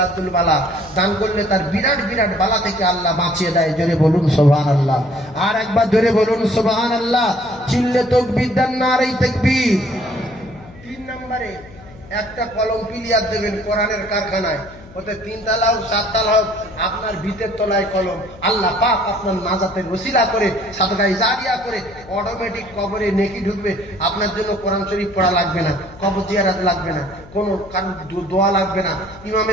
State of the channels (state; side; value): noise; left; hum, 20 dB below the sound